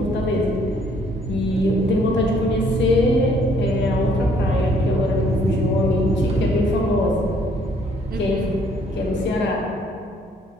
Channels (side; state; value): both; normal; correlation 0.64